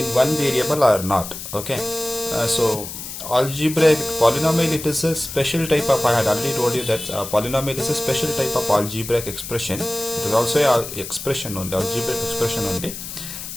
one variable or not. Okay. So algebraic polynomial, it is a special type of, I had already told you that polynomial is a special type of algebraic expression. It is also a expression only, algebraic expression only.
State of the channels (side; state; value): left; noise; hiss, 9 dB below the sound